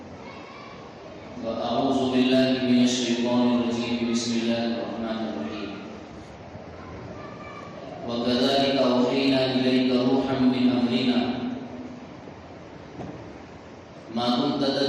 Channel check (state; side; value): identical; both; correlation 1.00